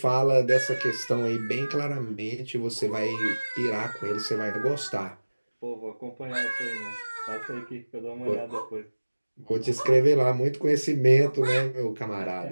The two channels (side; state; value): both; inverted; correlation -1.00